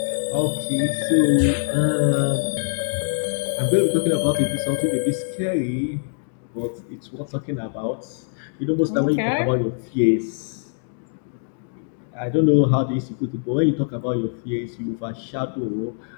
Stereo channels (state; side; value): silent; right; digital silence